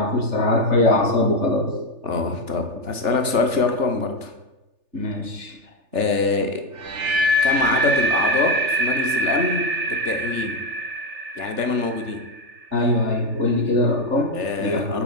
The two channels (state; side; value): late; left; 3.4 ms